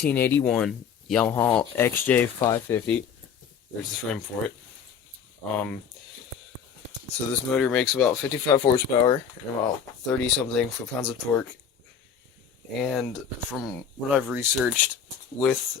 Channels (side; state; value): right; quieter; 7.2 dB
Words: Yamaha XJ550. There's the frame for it. So this motor makes about 55 horsepower and about 30 something foot-pounds of torque. And from what I've researched, with